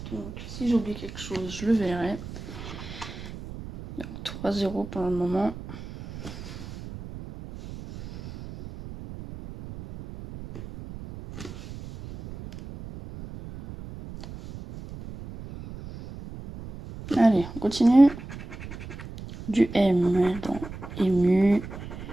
Donc si j'oublie quelque chose, je le verrai. 3-0 pour le moment. Allez, on continue. Du M dans ému,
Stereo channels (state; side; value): noise; right; rumble, 12 dB below the sound